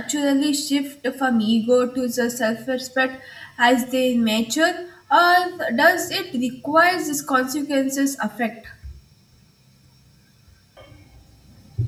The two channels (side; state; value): both; identical; correlation 1.00